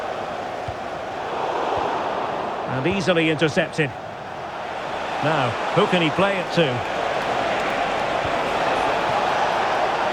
And easily intercepted. Now, who can he play it to?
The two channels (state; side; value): identical; both; correlation 1.00